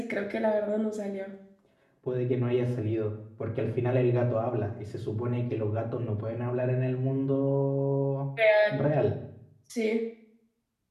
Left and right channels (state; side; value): identical; both; correlation 1.00